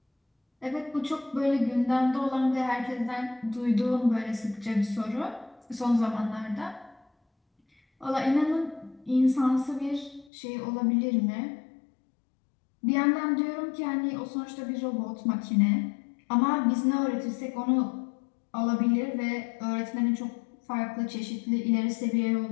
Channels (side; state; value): right; drops out; at 10.2 s